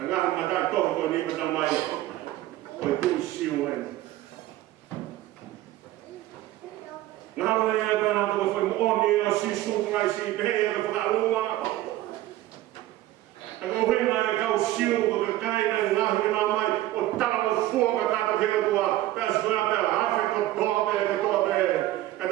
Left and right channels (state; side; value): quieter; left; 15.3 dB